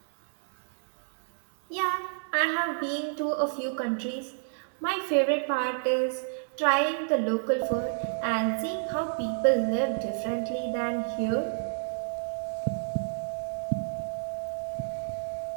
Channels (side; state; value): left; silent; digital silence